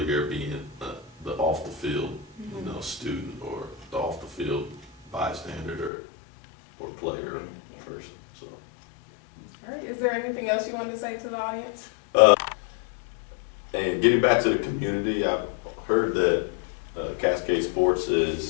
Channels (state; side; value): drops out; right; at 5.9 s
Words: being the off the field, you know, student, or the off the field bystander or player or person. So. All right. Is there anything else you wanted to say to the audience? And getting back to the community, I've heard that Cascade Sports